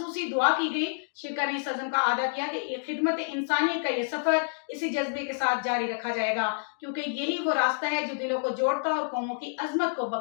دعا کی گئی۔ شرکا نے اس عزم کا اعادہ کیا کہ خدمت انسانیت کا یہ سفر اسی جذبے کے ساتھ جاری رکھا جائے گا، کیونکہ یہی وہ راستہ ہے جو دلوں کو جوڑتا اور قوموں کی عظمت کو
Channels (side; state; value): right; silent; digital silence